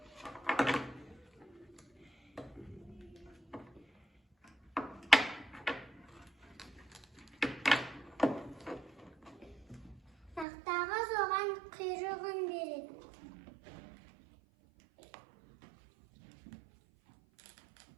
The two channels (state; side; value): drops out; left; at 10.5 s